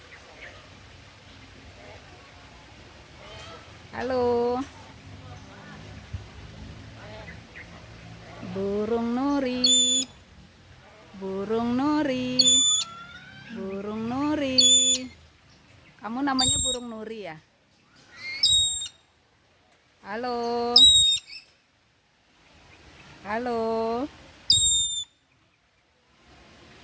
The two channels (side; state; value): both; identical; correlation 1.00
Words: Halo. Burung Nuri. Burung Nuri. Burung Nuri. Kamu namanya burung Nuri ya? Halo. Halo.